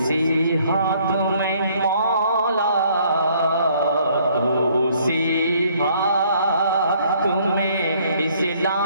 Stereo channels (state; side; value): inverted; both; correlation -0.63